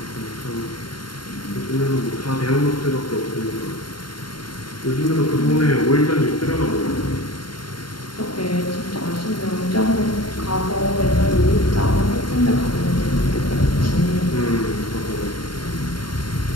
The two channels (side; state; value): right; late; 0.72 ms